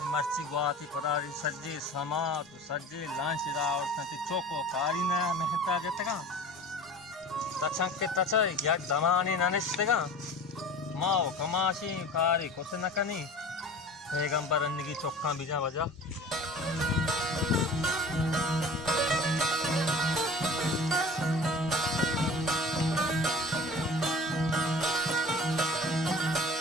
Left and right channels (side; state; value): both; normal; correlation 0.39